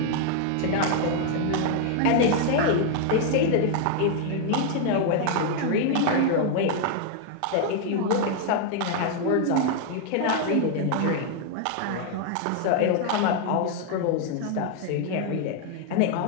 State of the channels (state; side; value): different; both; correlation 0.00